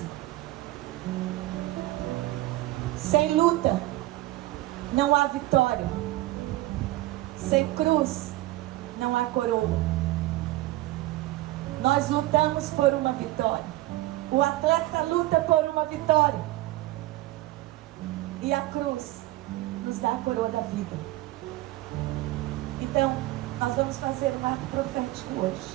sem luta não há vitória. Sem cruz não há coroa. Nós lutamos por uma vitória. O atleta luta por uma vitória. E a cruz nos dá a coroa da vida. Então, nós vamos fazer um ato profético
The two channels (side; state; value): left; quieter; 17.5 dB